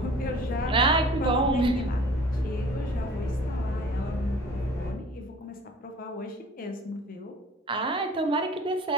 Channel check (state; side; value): normal; both; correlation 0.46